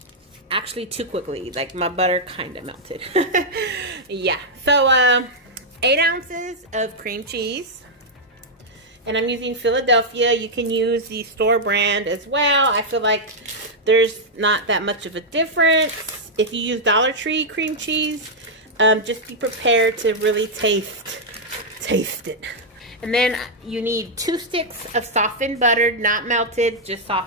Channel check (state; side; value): normal; both; correlation -0.04